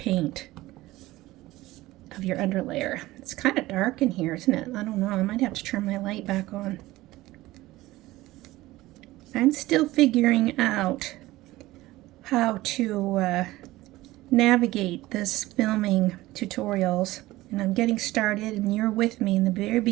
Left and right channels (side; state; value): left; quieter; 17.9 dB